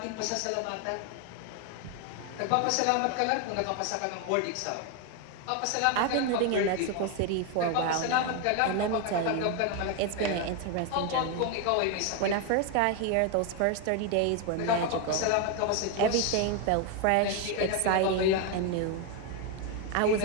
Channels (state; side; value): different; both; correlation 0.01